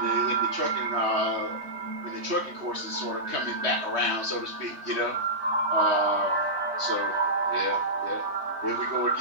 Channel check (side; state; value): left; late; 3.4 ms